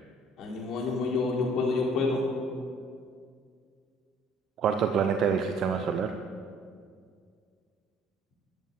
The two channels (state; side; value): normal; both; correlation 0.57